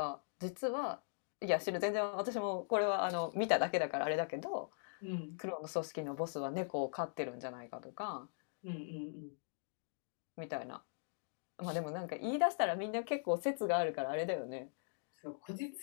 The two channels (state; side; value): silent; right; digital silence